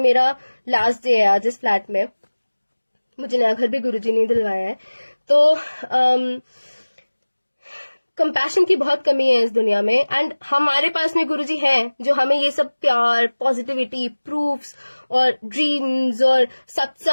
लास्ट डे है आज इस फ्लैट में। मुझे नया घर भी गुरुजी ने दिलवाया है। तो कंपैशन की बहुत कमी है इस दुनिया में, एंड हमारे पास में गुरुजी हैं जो हमें ये सब प्यार, पॉजिटिविटी, प्रूफ्स और ड्रीम्स और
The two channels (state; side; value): inverted; both; correlation -1.00